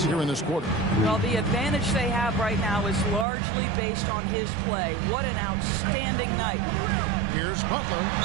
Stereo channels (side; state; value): left; drops out; at 3.2 s